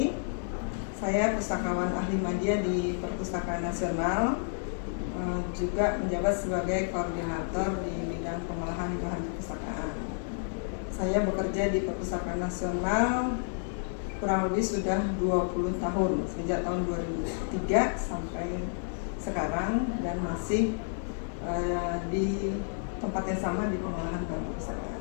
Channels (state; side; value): silent; right; digital silence